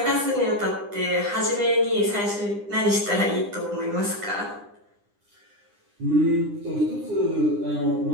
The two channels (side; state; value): left; late; 9.9 ms